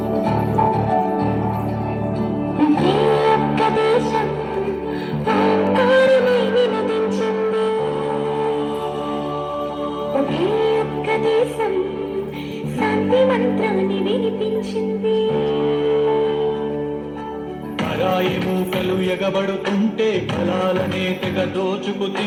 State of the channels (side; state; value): both; identical; correlation 1.00